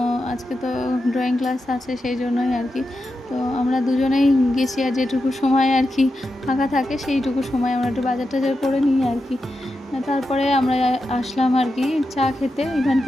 আজকে তো ড্রয়িং ক্লাস আছে, সেই জন্যই আর কি। তো আমরা দুজনেই গেছি, আর যেটুকু সময় আর কি ফাঁকা থাকে সেইটুকু সময় আমরা একটু বাজার টাজার করে নিই আর কি। তারপরে আমরা আসলাম আর কি চা খেতে,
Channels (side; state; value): both; normal; correlation 0.89